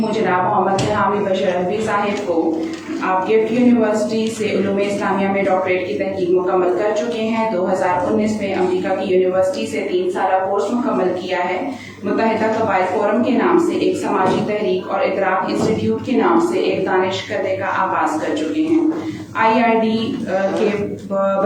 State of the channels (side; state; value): both; identical; correlation 1.00